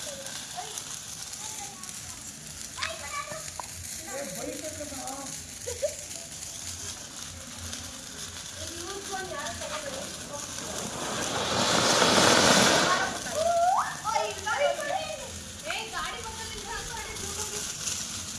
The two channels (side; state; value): both; identical; correlation 1.00